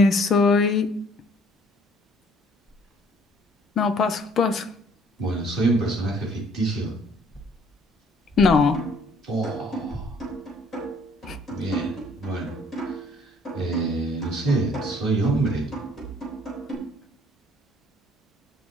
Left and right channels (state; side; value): normal; both; correlation 0.59